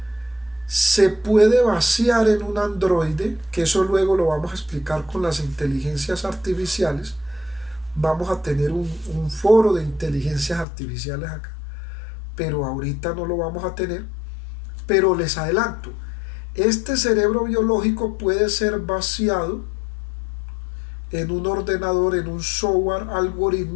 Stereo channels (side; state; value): right; drops out; at 10.7 s